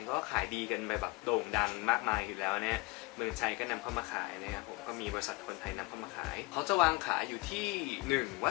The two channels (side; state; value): right; quieter; 24.5 dB